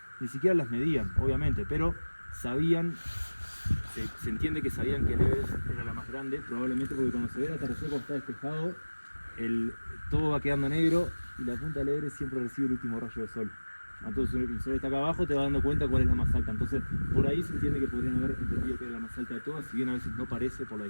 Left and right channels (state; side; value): inverted; both; correlation -1.00